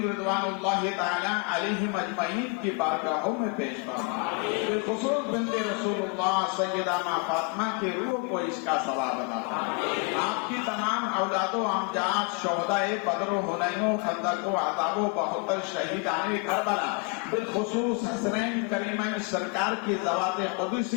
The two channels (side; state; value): right; quieter; 32.4 dB